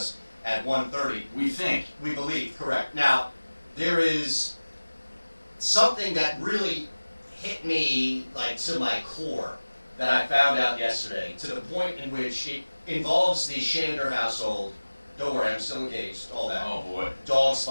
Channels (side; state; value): both; inverted; correlation -1.00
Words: at 1:30. We think. We believe, correct. Now, there is something that really hit me like to my core that I found out yesterday, to the point in which it involves the Shander household. Don't worry, I'm still engaged, all that. Oh boy. Dog's